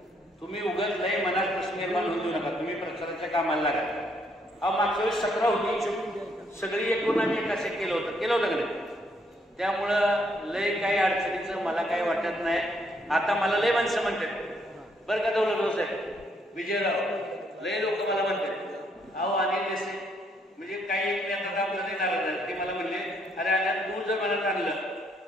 तुम्ही उगाच नाही मनात प्रश्न निर्माण होऊ देऊ नका. तुम्ही प्रचाराच्या कामाला लागा. मागच्या वेळेस 17 होती, सगळी एकूण आम्ही एकाच एक केलं होतं का नाही. त्यामुळं लय काही अडचणीचं मला काही वाटत नाही. आता मला लय माणसं म्हणतात बरं का दौलतराव साहेब, विजयराव, लय लोक मला म्हणतात अहो अनिल देसाई म्हणजे काही एक नेता आमचं नाही नाराज. ते मला म्हणले अरे अनिल तू जर मनात आणलं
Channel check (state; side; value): normal; both; correlation 0.71